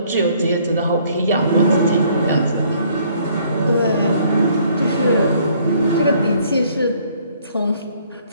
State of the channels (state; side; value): inverted; both; correlation -0.62